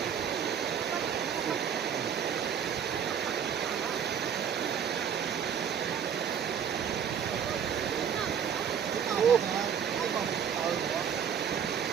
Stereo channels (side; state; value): left; quieter; 7.9 dB